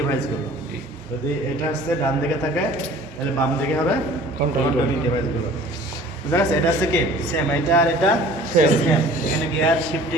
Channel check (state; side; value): normal; both; correlation 0.48